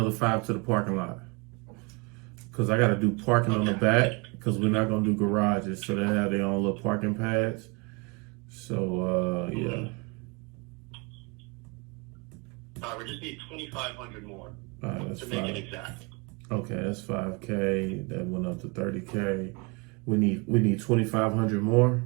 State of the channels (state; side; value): quieter; left; 29.4 dB